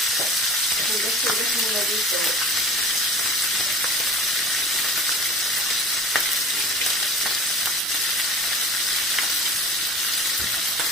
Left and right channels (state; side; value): normal; both; correlation 0.40